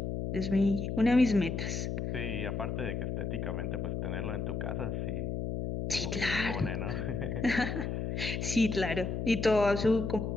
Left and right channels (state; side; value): noise; left; hum, 2 dB below the sound